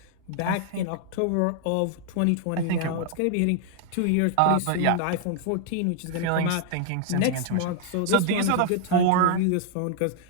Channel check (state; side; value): different; both; correlation 0.00